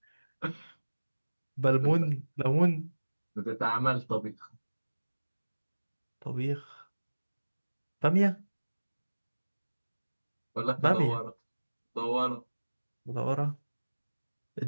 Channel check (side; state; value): both; inverted; correlation -1.00